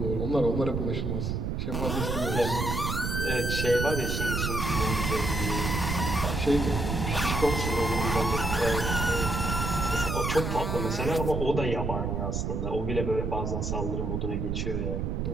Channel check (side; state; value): right; noise; rumble, 1 dB below the sound